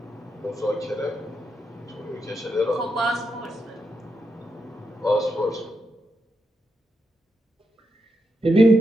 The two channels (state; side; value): normal; both; correlation 0.85